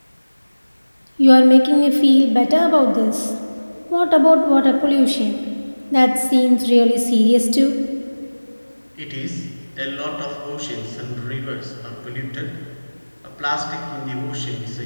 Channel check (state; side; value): inverted; both; correlation -1.00